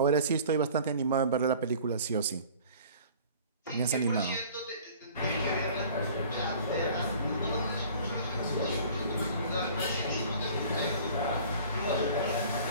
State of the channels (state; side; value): inverted; both; correlation -0.48